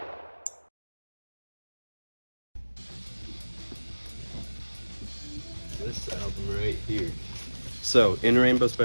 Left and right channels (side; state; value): both; inverted; correlation -1.00